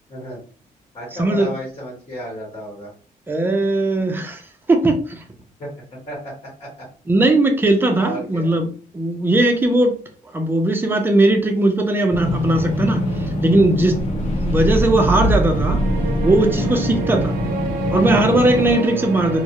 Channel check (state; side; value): normal; both; correlation 0.75